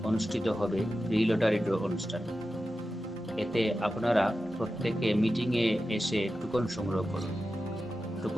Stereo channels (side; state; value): both; normal; correlation 0.92